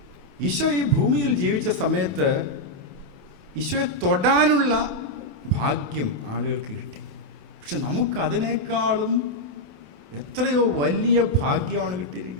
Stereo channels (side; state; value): left; late; 28 ms